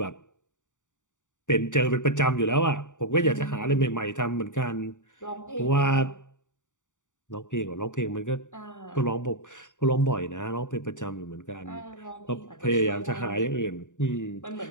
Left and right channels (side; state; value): right; late; 0.86 ms